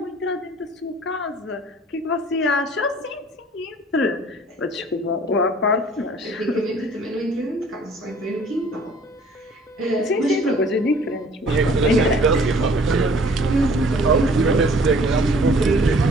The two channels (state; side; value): normal; both; correlation 0.54